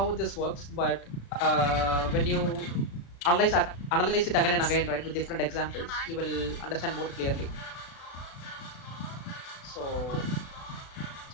this works. But when you analyze it again and again, right, with different examples, you will understand more clearly. So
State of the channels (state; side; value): late; right; 35 ms